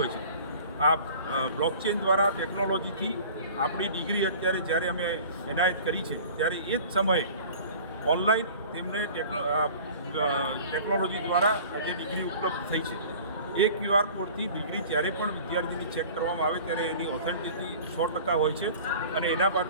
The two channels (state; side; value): inverted; both; correlation -0.44